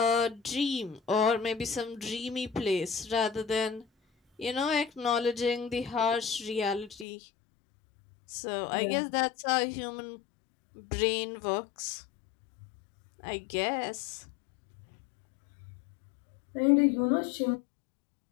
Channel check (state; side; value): drops out; right; at 7.1 s